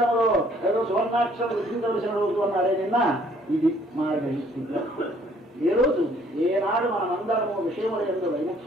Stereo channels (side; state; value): both; normal; correlation 0.61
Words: ఏదో సువర్ణాక్షరం రుచించవలసిన రోజు అన్నారే నిన్న. ఇది మార్గశీర్ష. ఏ రోజు ఏనాడు మనమందరము విషయముల యందు